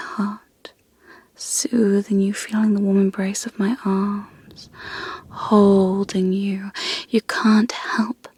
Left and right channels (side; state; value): both; identical; correlation 1.00